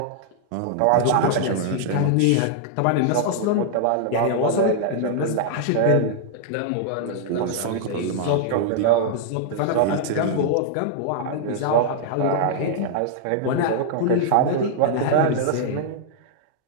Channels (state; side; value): different; both; correlation -0.01